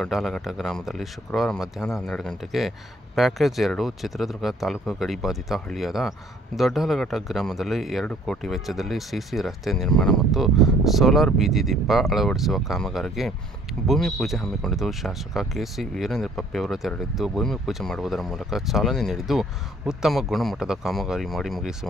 ಗ್ರಾಮದಲ್ಲಿ ಶುಕ್ರವಾರ ಮಧ್ಯಾಹ್ನ 12 ಗಂಟೆಗೆ ಪ್ಯಾಕೇಜ್ 2 ಚಿತ್ರದುರ್ಗ ತಾಲೂಕು ಗಡಿಬಾಧಿತ ಹಳ್ಳಿಯಾದ ದೊಡ್ಡಾಲಘಟ್ಟ ಗ್ರಾಮದಲ್ಲಿ 2 ಕೋಟಿ ವೆಚ್ಚದಲ್ಲಿ ಸಿಸಿ ರಸ್ತೆ ನಿರ್ಮಾಣ ಮತ್ತು ಸೋಲಾರ್ ಬೀದಿ ದೀಪ ಅಳವಡಿಸುವ ಕಾಮಗಾರಿಗೆ ಭೂಮಿ ಪೂಜೆ ಹಮ್ಮಿಕೊಂಡಿದ್ದು, ಶಾಸಕ ಕೆಸಿ ವೀರೇಂದ್ರ ಪಪ್ಪಿ ಅವರು ತೆರಳಿದ್ದು ಭೂಮಿ ಪೂಜೆ ಮಾಡುವುದರ ಮೂಲಕ ಚಾಲನೆ ನೀಡಿದ್ದು, ಉತ್ತಮ ಗುಣಮಟ್ಟದ ಕಾಮಗಾರಿ ಮಾಡಿ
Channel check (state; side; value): normal; both; correlation 0.59